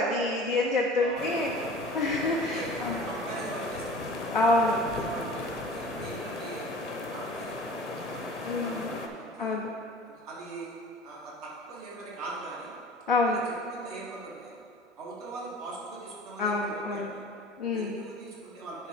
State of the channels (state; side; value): normal; both; correlation 0.43